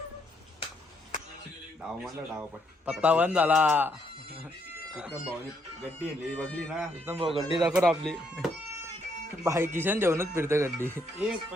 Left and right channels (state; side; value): normal; both; correlation 0.73